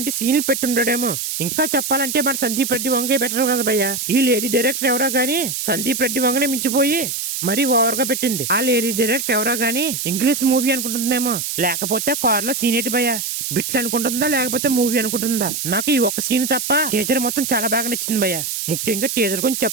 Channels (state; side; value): noise; right; hiss, 3 dB below the sound